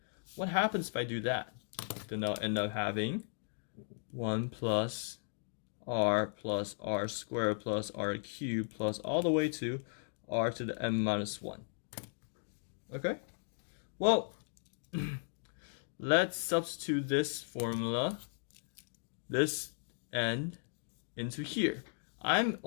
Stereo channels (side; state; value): right; silent; digital silence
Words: What happens if I do that? Then I'll end up having 1 plus r squared plus r cubed plus all the way to r to the n minus 1. Okay? Well, let's substitute this formula, this n, into here. I'm